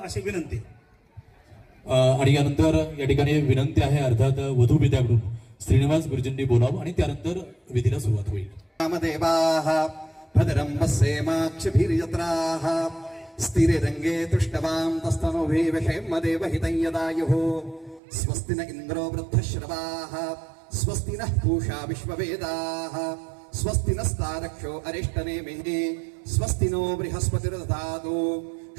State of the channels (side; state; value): left; drops out; at 18.0 s